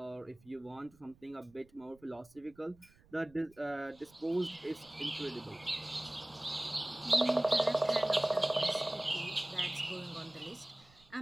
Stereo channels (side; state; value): right; noise; rumble, 28 dB below the sound